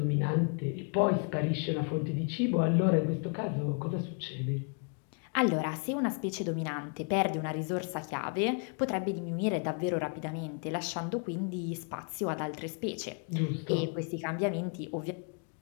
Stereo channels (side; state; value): right; quieter; 39.5 dB